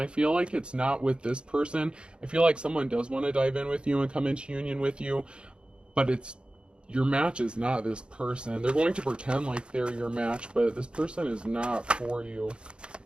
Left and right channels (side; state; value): left; late; 0.054 ms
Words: feel like it's not with this person. I feel like someone does want to dive in with you and come into union with you, but your match is not this person. They're going to pretend like they're your match, but this person is not for you.